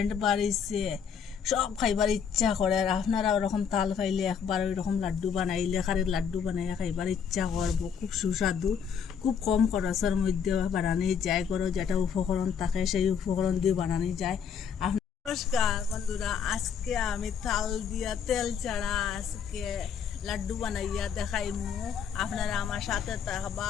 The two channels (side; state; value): right; quieter; 7.2 dB